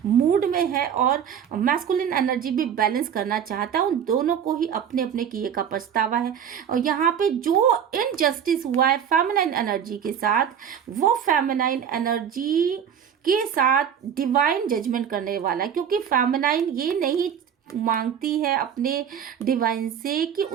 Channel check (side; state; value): left; quieter; 8.4 dB